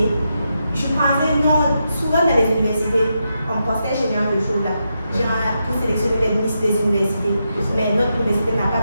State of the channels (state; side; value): inverted; both; correlation -0.85